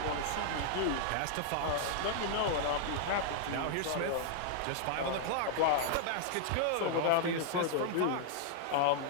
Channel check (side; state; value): both; different; correlation -0.01